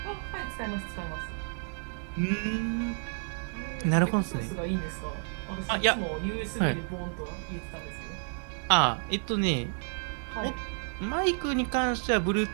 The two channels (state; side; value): silent; left; 57 dB below the other